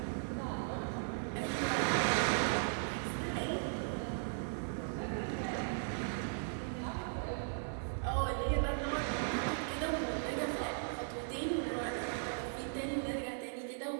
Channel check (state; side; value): silent; left; 53 dB below the other